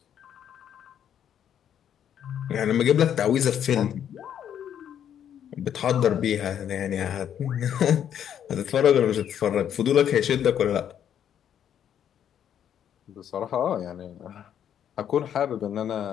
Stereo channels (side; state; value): right; quieter; 9.5 dB